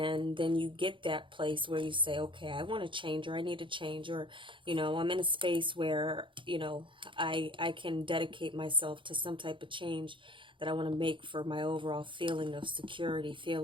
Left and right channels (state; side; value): late; left; 0.24 ms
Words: then you get that place where you say, okay, I want to change, or I need to change, or I'm in a space where I can dedicate myself to some type of change that I want to make for my overall feeling of security,